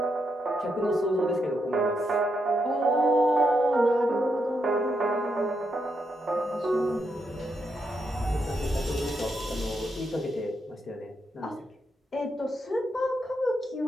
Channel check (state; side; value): normal; both; correlation 0.81